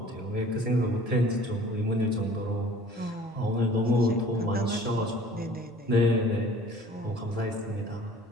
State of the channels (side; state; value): both; normal; correlation 0.49